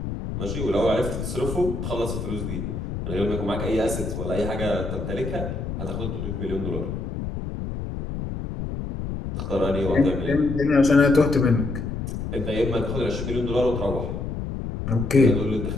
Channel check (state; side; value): noise; left; rumble, 5 dB below the sound